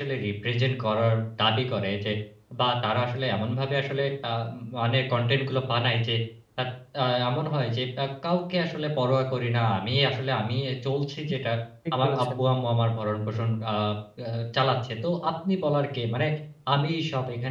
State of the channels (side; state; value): both; identical; correlation 1.00